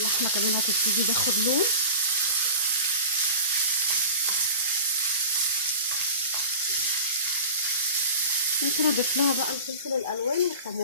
كمان هتبتدي تاخد لون. ممكن اضيف لها بقى الفلفل الالوان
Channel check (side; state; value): both; inverted; correlation -0.37